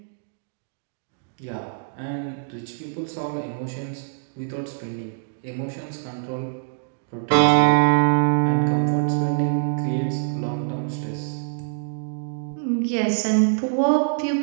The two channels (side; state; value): left; silent; digital silence